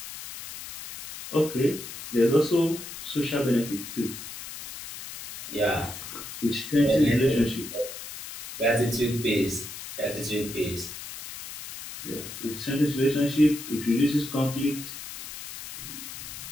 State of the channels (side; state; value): left; noise; hiss, 11 dB below the sound